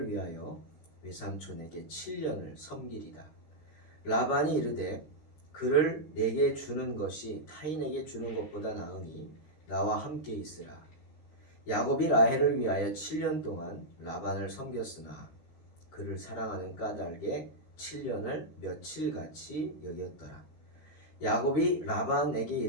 위하여 외삼촌에게 7년을 섬기리다. 라반이 이르되 그를 내게 주는 것이 타인에게 주는 것보다 나으니 나와 함께 있으라. 야곱이 라헬을 위하여 7년 동안 라반을 섬겼으나 그를 사랑하는 까닭에 7년을 며칠같이 여겼더라. 야곱이 라반에게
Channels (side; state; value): right; late; 13 ms